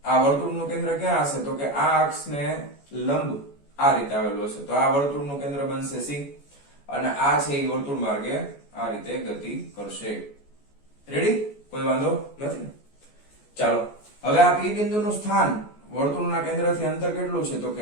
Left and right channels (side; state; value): right; late; 14 ms